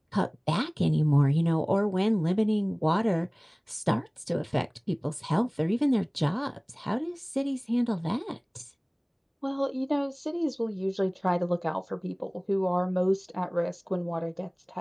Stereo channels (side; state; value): both; identical; correlation 1.00